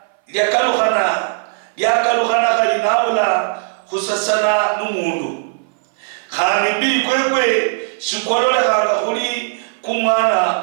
lyakaluhana kalinabula khusasana n'umundu khandi mbili kwekwe shikololehanga khuli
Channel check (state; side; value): silent; left; 59 dB below the other